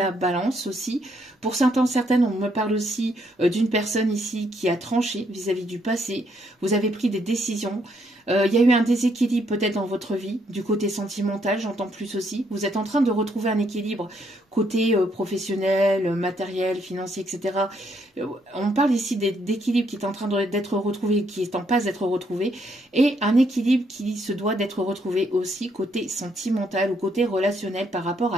balance aussi. Pour certains, certaines, on me parle aussi d'une personne ici qui a tranché vis-à-vis du passé. Vous avez pris des décisions. Il y a eu un déséquilibre peut-être dans votre vie, du côté sentimental, j'entends plus aussi. Vous êtes en train de retrouver un équilibre côté professionnel, matériel, financier, etc. On parle ici d'équilibre qui est en train d'être retrouvé, qui est en passe d'être retrouvé, et un équilibre qui se doit d'être retrouvé aussi côté sentimental ou côté relationnel par rapport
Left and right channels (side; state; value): both; normal; correlation 0.73